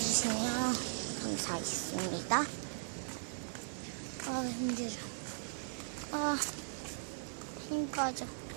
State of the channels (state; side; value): silent; left; 52 dB below the other